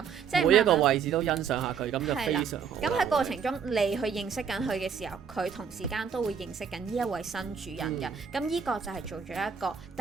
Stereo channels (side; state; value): left; quieter; 6.8 dB